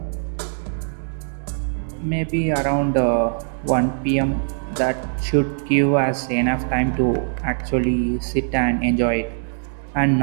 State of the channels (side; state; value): left; silent; digital silence